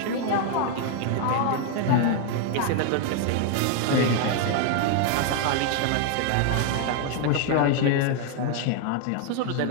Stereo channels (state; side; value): different; both; correlation 0.00